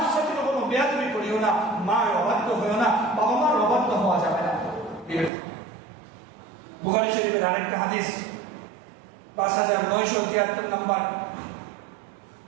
সাথে কখনো বেয়াদবি করিও না মার অবাধ্য হইও না বাবা মার অবাধ্য হওয়া যাবে না বুখারী শরীফের আরেকটা হাদিস 5973 নম্বর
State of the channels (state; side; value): drops out; left; at 5.3 s